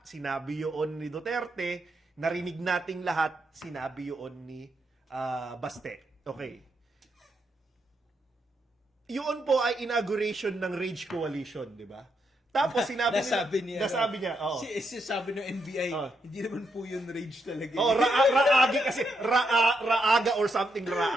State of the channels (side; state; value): both; normal; correlation 0.80